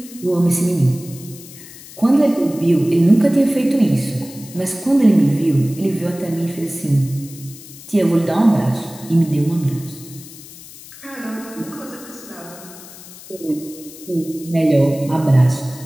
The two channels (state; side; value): noise; left; hiss, 17 dB below the sound